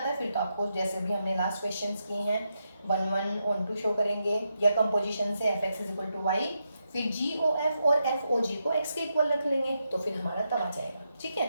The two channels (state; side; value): inverted; both; correlation -0.84